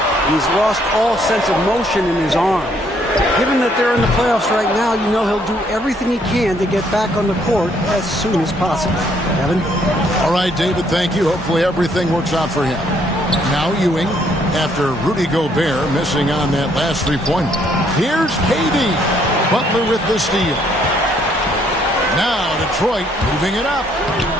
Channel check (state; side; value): normal; both; correlation 0.68